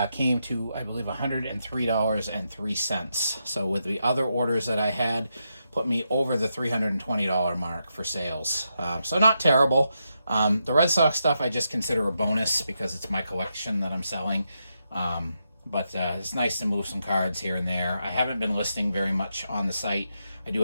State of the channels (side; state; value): both; inverted; correlation -0.84